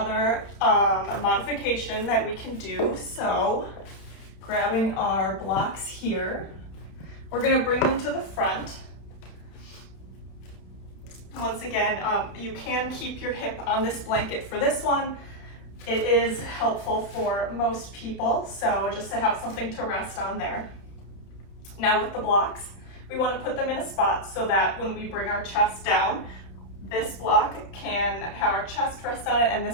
modification that we can do. So, grabbing our blocks here, we're going to bring them to the front. Once again, you can keep your hip on this blanket for this one. It is helpful for most people, so just to have something to rest on there. Now with the blocks, we want to put them in a spot so that when we bring our chest down, this block can have our chest rest on it, and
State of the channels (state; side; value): late; right; 31 ms